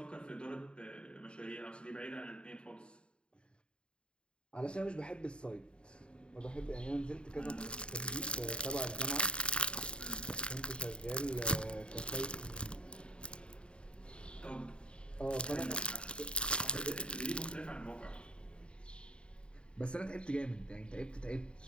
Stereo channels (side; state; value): right; late; 0.053 ms